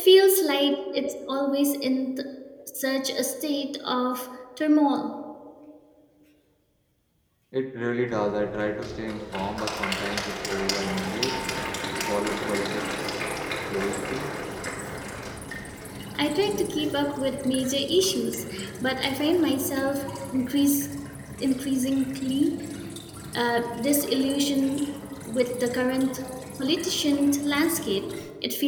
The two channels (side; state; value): both; identical; correlation 1.00